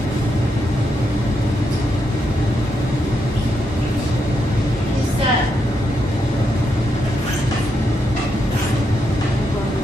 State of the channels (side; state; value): both; normal; correlation 0.81